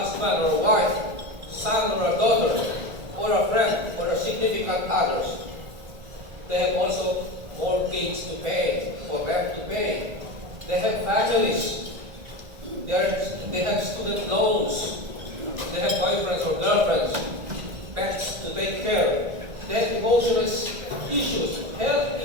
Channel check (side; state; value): left; late; 1.4 ms